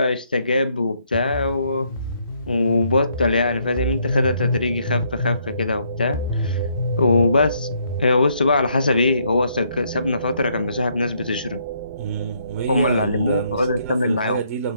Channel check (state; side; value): inverted; both; correlation -0.71